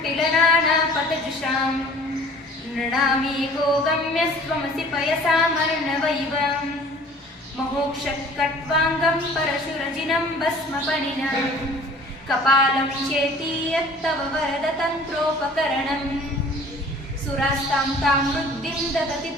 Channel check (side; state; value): both; normal; correlation 0.49